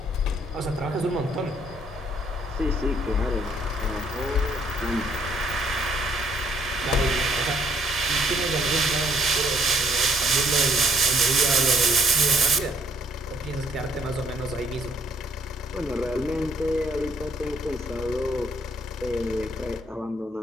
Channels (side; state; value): both; normal; correlation 0.65